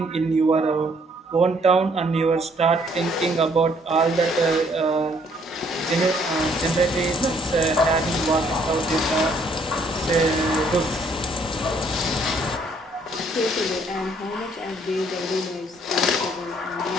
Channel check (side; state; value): both; normal; correlation 0.65